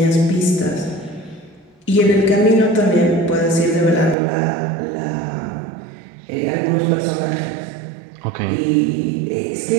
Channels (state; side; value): drops out; left; at 4.2 s